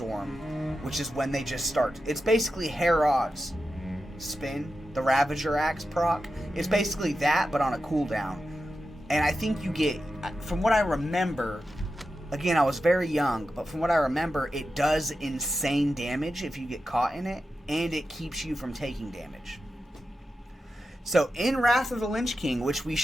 which is when they just start. It's basically Herod's spin, the Ravager Axe proc. It's basically that, but on a cooldown. And I think you get, from what I remember, again, I was very young, but from what I remember, it does insane damage if you get caught in it, and it keeps you from taking damage. So, in Wrath of the Lynch King, which we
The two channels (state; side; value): normal; both; correlation 0.90